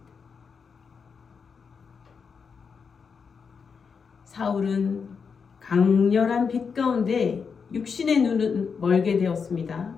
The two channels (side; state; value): right; quieter; 5.8 dB